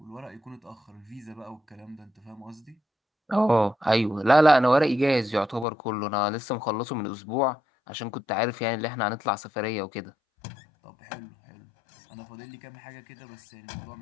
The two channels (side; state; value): right; drops out; at 5.7 s